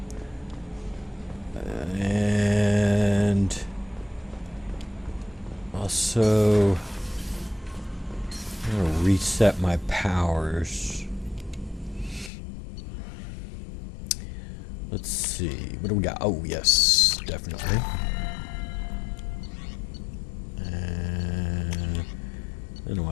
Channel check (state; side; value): drops out; right; at 12.3 s